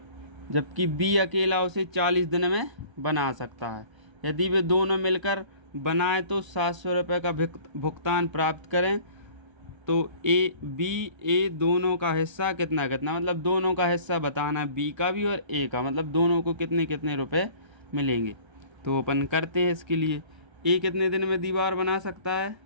जबकि बी अकेला उसे 40 दिन में बना सकता है। यदि वे दोनों मिलकर बनाए तो 700 रुपये का भुगतान प्राप्त करें। तो ए दोनों का हिस्सा कितना कितना, मतलब दोनों का हिस्सा बताना, बी का भी और ए का, मतलब दोनों को कितने कितने रुपए मिलेंगे। तो अपन करते हैं इसके लिए। ए कितने दिन में दीवार बना सकता है,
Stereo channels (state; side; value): late; left; 1.3 ms